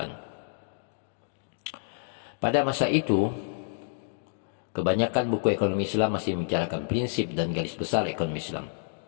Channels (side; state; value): right; silent; digital silence